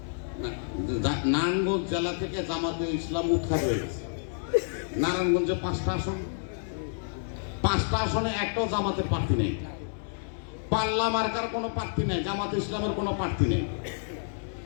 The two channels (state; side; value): silent; right; digital silence